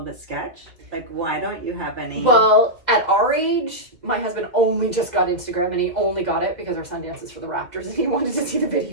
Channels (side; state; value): left; late; 2.0 ms